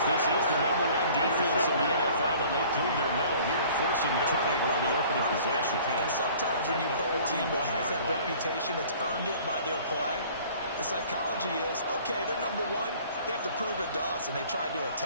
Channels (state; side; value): inverted; both; correlation -0.50